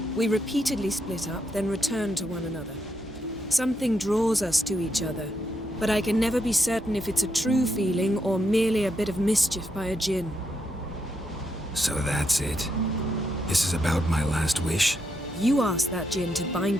We repeatedly split up, then return to one another. Something draws us to each other, but I can never be certain if it's a true feeling or merely a bit of mischief by a djinn. So that's it. This is about my last wish? You asked that djinn to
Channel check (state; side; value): normal; both; correlation 0.80